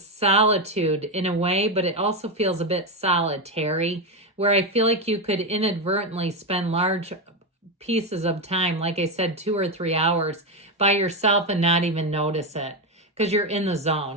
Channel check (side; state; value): both; normal; correlation 0.10